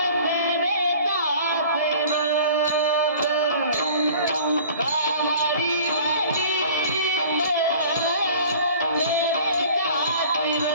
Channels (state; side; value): inverted; both; correlation -0.46